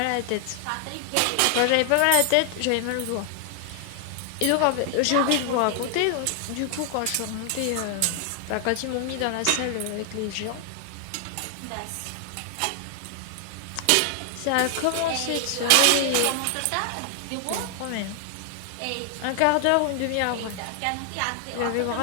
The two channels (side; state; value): both; different; correlation 0.00